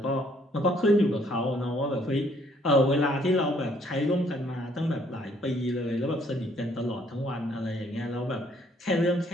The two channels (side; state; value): both; normal; correlation 0.65